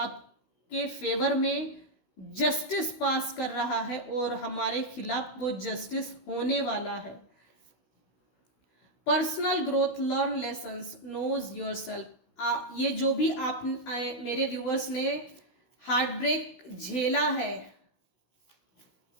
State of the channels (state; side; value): late; right; 16 ms